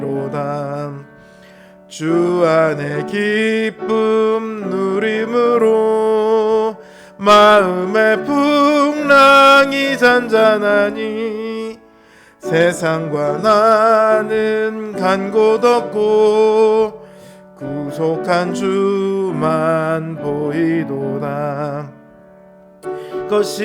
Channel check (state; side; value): identical; both; correlation 1.00